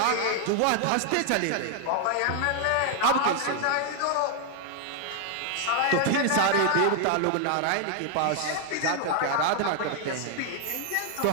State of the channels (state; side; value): different; both; correlation 0.00